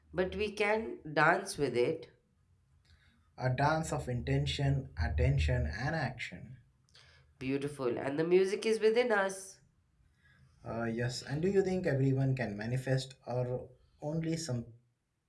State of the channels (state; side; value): identical; both; correlation 1.00